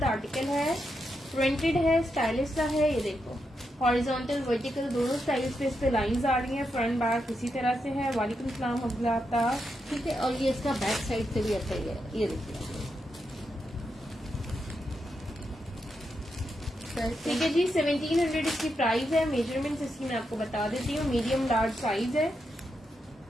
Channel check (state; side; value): normal; both; correlation 0.84